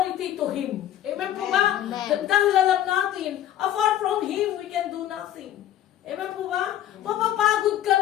to Him. Amen po ba? Dahil alam natin, apart from Him, we can do nothing. Amen po ba? Mapapagod ka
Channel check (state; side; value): quieter; right; 11.8 dB